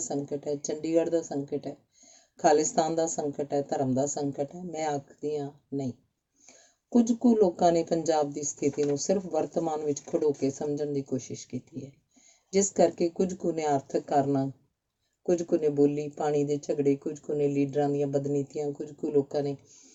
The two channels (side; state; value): both; identical; correlation 1.00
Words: ਸੰਕਟ ਹੈ, ਚੰਡੀਗੜ੍ਹ ਦਾ ਸੰਕਟ ਹੈ, ਖਾਲਿਸਤਾਨ ਦਾ ਸੰਕਟ ਹੈ, ਧਰਮ ਦਾ ਸੰਕਟ ਹੈ? ਮੈਂ ਆਖਦੀ ਹਾਂ ਨਹੀਂ। ਕੁਝ ਕੁ ਲੋਕਾਂ ਨੇ ਪੰਜਾਬ ਦੀ ਸਥਿਤੀ ਨੂੰ ਸਿਰਫ ਵਰਤਮਾਨ ਵਿੱਚ ਖੜੋ ਕੇ ਸਮਝਣ ਦੀ ਕੋਸ਼ਿਸ਼ ਕੀਤੀ ਹੈ, ਜਿਸ ਕਰਕੇ ਕੁਝ ਕੁ ਨੇ ਆਰਥਿਕ ਕਾਰਨਾਂ, ਕੁਝ ਕੁ ਨੇ ਬੋਲੀ, ਪਾਣੀ ਦੇ ਝਗੜੇ, ਕੁਝ ਕੁ ਨੇ ਲੀਡਰਾਂ ਦੀਆਂ ਬਦਨੀਤੀਆਂ, ਕੁਝ ਕੁ